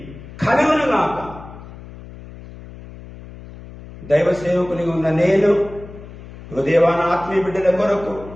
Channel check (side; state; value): left; noise; hum, 16 dB below the sound